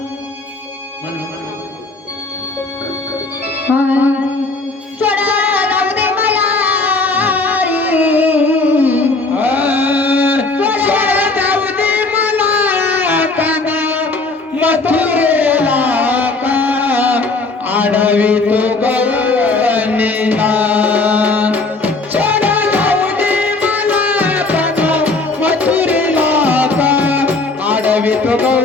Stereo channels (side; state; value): right; quieter; 3.4 dB